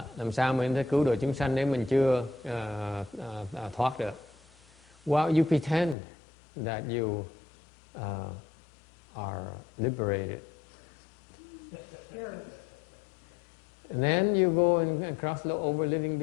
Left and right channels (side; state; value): right; drops out; at 6.0 s